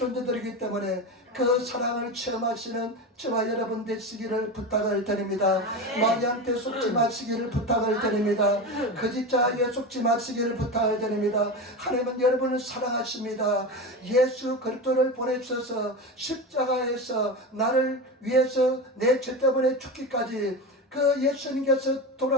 때문에 그 사랑을 체험하시는 저와 여러분 되시기를 부탁을 드립니다. 마귀한테 속지 마시기를 부탁을 드립니다. 거짓자에게 속지 마시기를 부탁을 드립니다. 하나님은 여러분을 사랑하십니다. 예수 그리스도를 보내주셔서 십자가에서 나를 위해서 내 죄 때문에 죽기까지, 그 예수님께서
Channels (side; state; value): both; normal; correlation 0.23